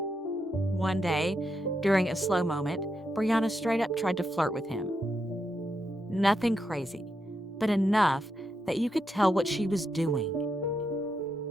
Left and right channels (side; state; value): both; normal; correlation 0.83